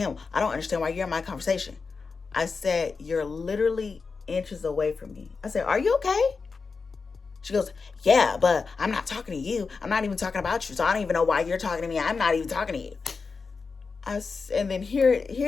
I don't understand why you're in my conversation." I said, "You're literally inches away from me." I said, "Are you okay?" She goes, "Yeah, but I'm not talking to you. I'm not even talking about you. So I don't even know why you're talking to me. I'm not even talking to you." And then hear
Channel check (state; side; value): quieter; right; 4.7 dB